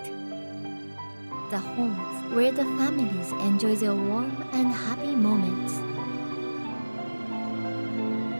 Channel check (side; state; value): both; inverted; correlation -1.00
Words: the homes where the families enjoy their warm and happy moments.